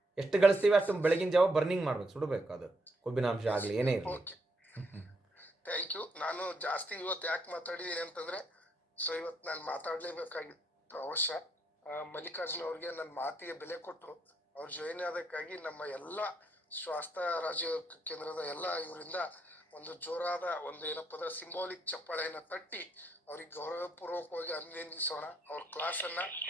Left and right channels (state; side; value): normal; both; correlation 0.75